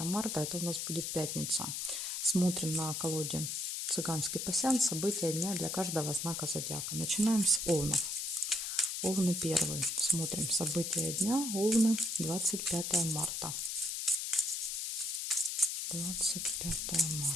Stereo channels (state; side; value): noise; left; hiss, 3 dB below the sound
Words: марта. Это у нас будет пятница. Смотрим на колоде «Цыганский пасьянс». События дня для каждого знака зодиака. Начинаем с Овнов. Овны первый. Смотрим события дня. Овны, 25 марта. 25